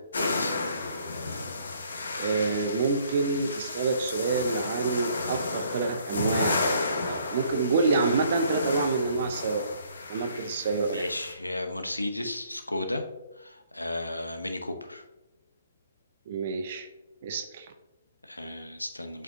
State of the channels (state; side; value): inverted; both; correlation -0.63